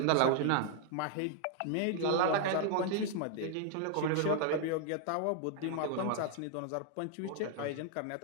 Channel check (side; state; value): both; different; correlation 0.00